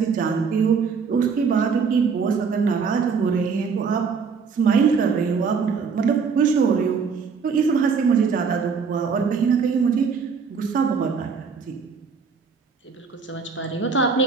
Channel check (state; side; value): quieter; left; 5.7 dB